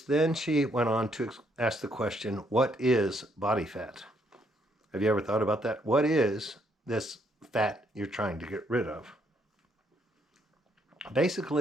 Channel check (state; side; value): normal; both; correlation 0.71